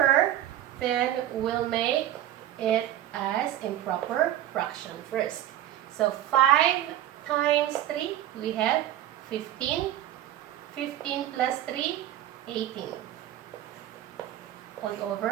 then we'll make it as improper fraction first. So, 5 times 3, we have 15. 15 plus 3, 18. All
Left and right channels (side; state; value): left; quieter; 12.6 dB